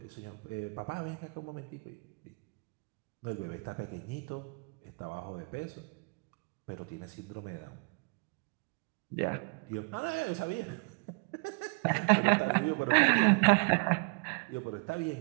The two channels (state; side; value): quieter; left; 33.5 dB